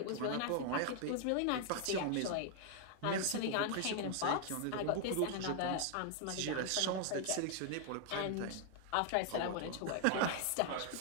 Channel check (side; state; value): both; different; correlation 0.00